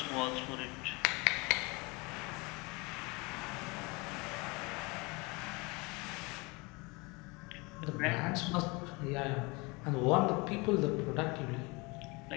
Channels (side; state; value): right; quieter; 26.7 dB